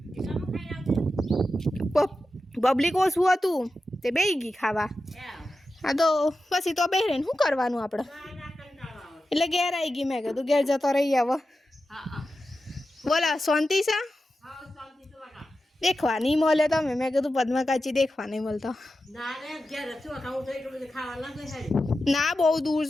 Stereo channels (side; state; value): both; normal; correlation 0.91